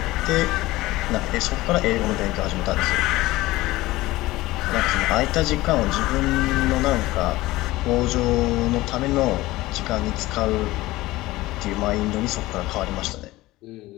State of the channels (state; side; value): quieter; right; 18.5 dB